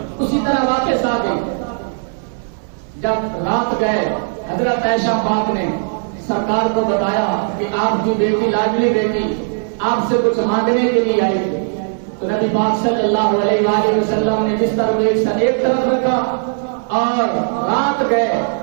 اسی طرح واپس آ گئی، جب رات گئے حضرت عائشہ پاک نے سرکار کو بتایا کہ آپ کی بیٹی لاڈلی بیٹی آپ سے کچھ مانگنے کے لیے آئی تھی، تو نبی پاک صلی اللہ علیہ وآلہ وسلم نے بستر کو ایک طرف رکھا اور رات گئے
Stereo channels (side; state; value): left; silent; 63 dB below the other